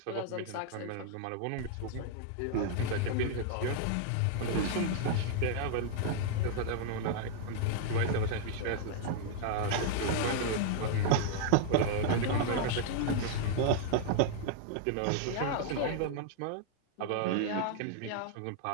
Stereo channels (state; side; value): different; both; correlation -0.01